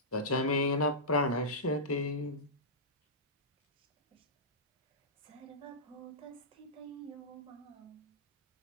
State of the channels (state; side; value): normal; both; correlation -0.17